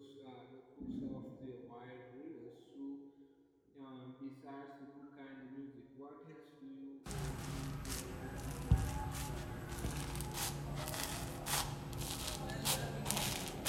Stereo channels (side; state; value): both; identical; correlation 1.00